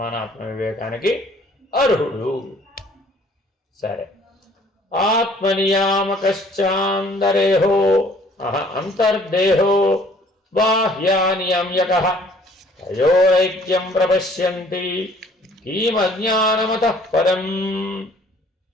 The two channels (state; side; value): normal; both; correlation 0.57